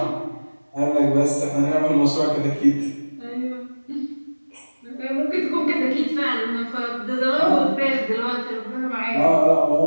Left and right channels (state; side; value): inverted; both; correlation -1.00